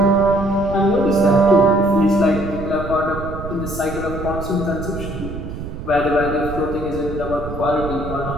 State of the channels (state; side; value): noise; right; rumble, 9 dB below the sound